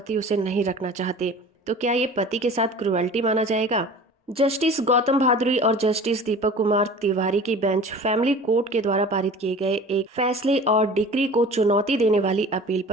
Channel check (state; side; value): normal; both; correlation 0.41